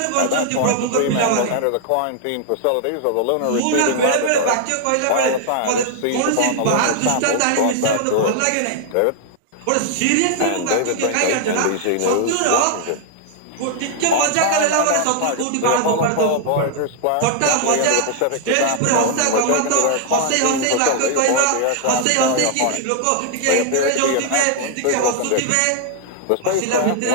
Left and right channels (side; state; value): both; different; correlation -0.01